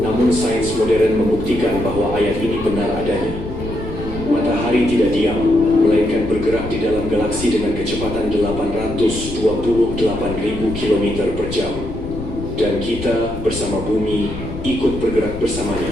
Namun sains modern membuktikan bahwa ayat ini benar adanya. Matahari tidak diam, melainkan bergerak di dalam galaksi dengan kecepatan 828.000 km per jam. Dan kita bersama bumi ikut bergerak bersamanya.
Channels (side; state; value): left; noise; rumble, 9 dB below the sound